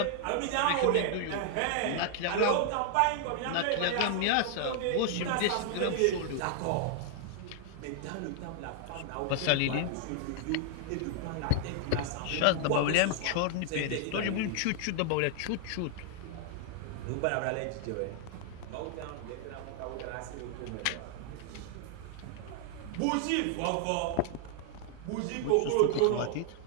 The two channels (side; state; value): both; different; correlation 0.00